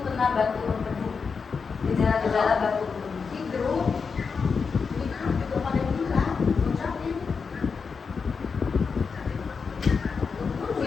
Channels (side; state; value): right; quieter; 5.4 dB